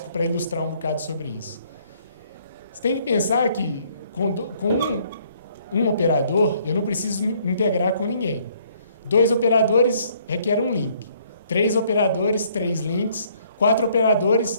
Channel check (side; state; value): both; inverted; correlation -0.64